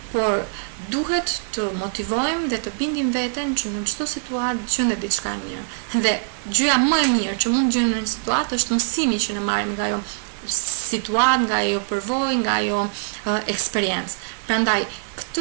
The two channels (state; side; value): silent; left; digital silence